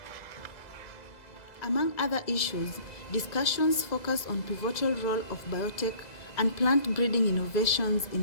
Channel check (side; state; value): right; late; 2.0 ms